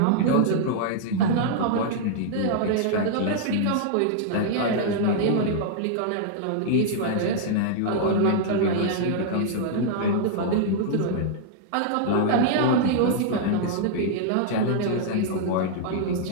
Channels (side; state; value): both; different; correlation -0.01